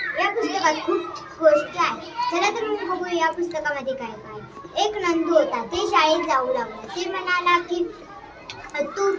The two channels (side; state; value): both; identical; correlation 1.00